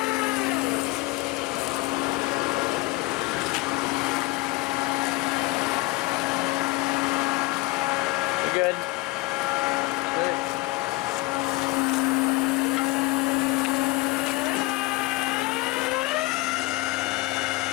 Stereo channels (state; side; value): quieter; right; 21.0 dB